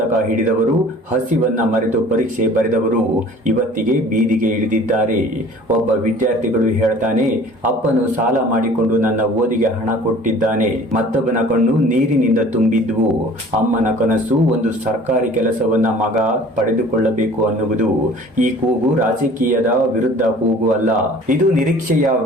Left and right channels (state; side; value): normal; both; correlation 0.48